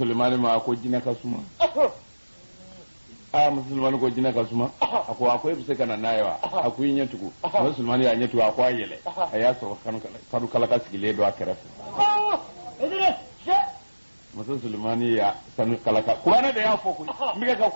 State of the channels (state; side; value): inverted; both; correlation -1.00